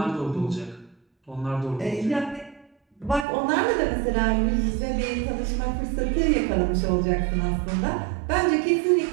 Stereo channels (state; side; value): drops out; left; at 3.2 s